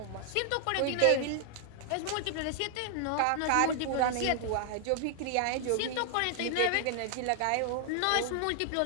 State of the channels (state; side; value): different; both; correlation 0.00